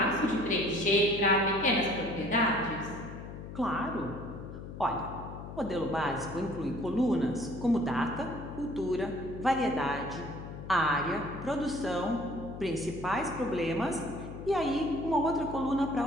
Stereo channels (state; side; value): noise; left; hum, 11 dB below the sound